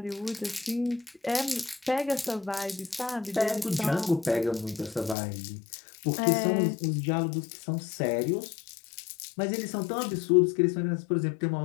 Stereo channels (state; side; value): drops out; right; at 5.2 s